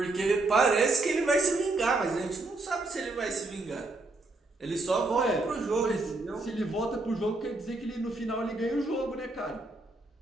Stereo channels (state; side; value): quieter; left; 3.1 dB